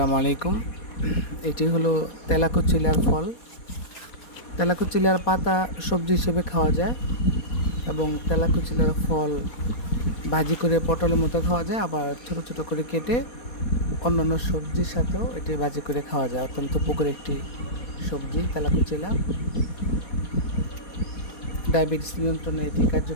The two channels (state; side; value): late; right; 4.2 ms